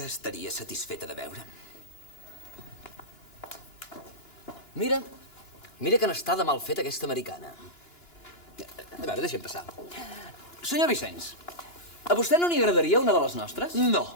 estaria satisfeta de veure'm. Mira que n'està de mal fet aquesta americana. A veure, deixa'm passar. Senyor Vicenç, a vostè no n'hi agradaria una de les nostres?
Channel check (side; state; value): right; late; 2.9 ms